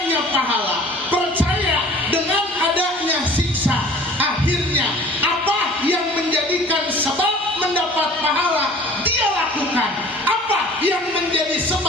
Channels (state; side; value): normal; both; correlation 0.47